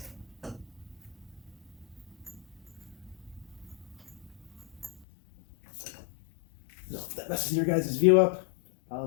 No, that messes your guys' view up.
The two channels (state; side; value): drops out; right; at 5.1 s